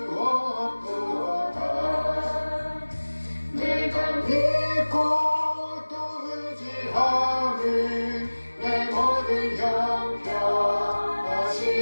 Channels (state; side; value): inverted; both; correlation -1.00